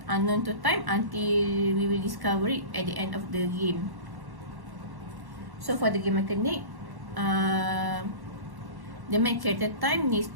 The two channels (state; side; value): late; left; 1.1 ms